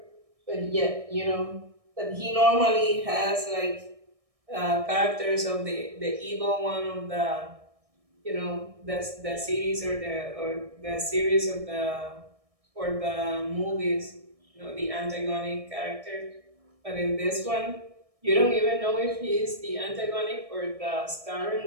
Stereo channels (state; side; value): late; left; 1.6 ms